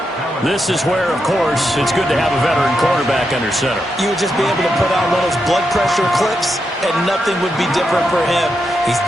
This is where, of course, it's good to have a veteran quarterback under center. You would just be able to put on one of those blood pressure clips, and nothing would be different for him. He's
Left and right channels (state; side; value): normal; both; correlation 0.84